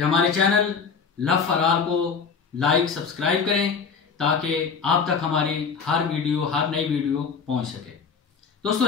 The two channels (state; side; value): quieter; right; 5.8 dB